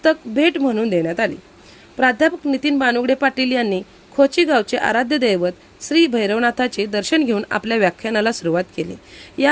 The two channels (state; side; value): identical; both; correlation 1.00